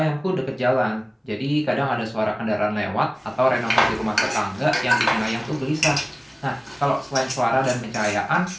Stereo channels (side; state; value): both; identical; correlation 1.00